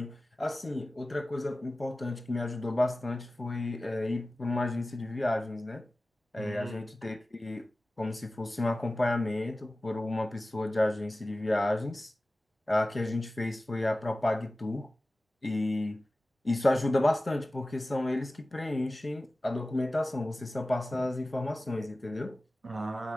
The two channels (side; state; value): both; normal; correlation 0.96